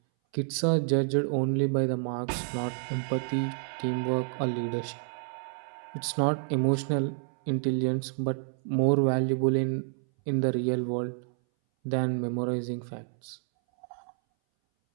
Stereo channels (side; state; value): left; silent; 58 dB below the other